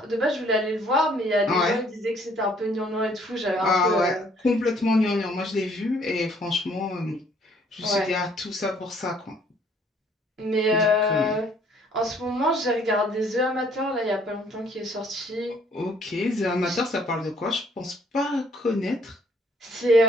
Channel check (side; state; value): both; normal; correlation 0.62